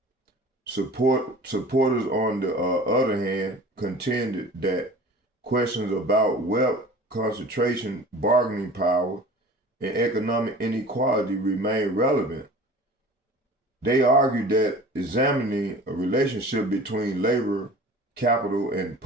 Supporters, on the other hand, contended that questions about wealth concentration, bargaining power, and economic inequality remain relevant. They argued that examining a relationship between labor, capital, and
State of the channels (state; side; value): normal; both; correlation 0.42